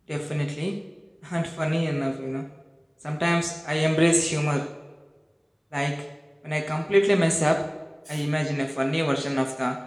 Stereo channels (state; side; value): identical; both; correlation 1.00